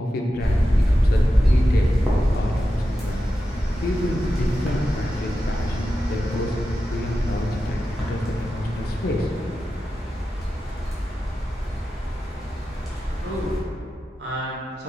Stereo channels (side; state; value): both; normal; correlation 0.91